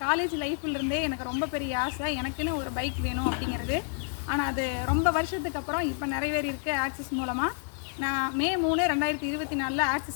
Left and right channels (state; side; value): silent; right; 57 dB below the other